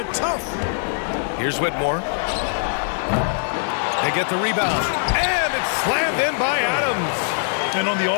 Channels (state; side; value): silent; right; digital silence